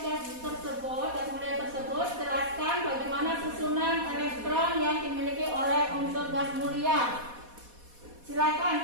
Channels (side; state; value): left; late; 4.2 ms